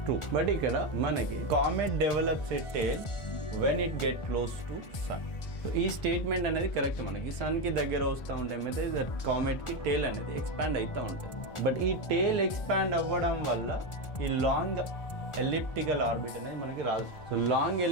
true. But ఇక్కడ మనకి comet develops a tail when it get close to sun. So ఈ స్టేట్మెంట్ అనేది కరెక్ట్. మనకి సన్కి దగ్గర వస్తూ ఉంటే మీద కామెట్కి టేల్ అనేది ఎక్స్పాండ్ అవుతూ ఉంటుంది. బట్ ఈ టేల్ ఎక్స్పాండ్ అవ్వడం వల్ల ఈ లాంగ్ ఎలిప్టికల్ ఆర్బిట్ అనేది మనకి రాదు. సో లాంగ్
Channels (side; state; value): right; late; 1.4 ms